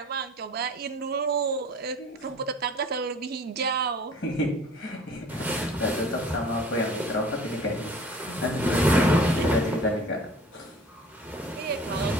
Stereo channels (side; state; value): both; normal; correlation 0.46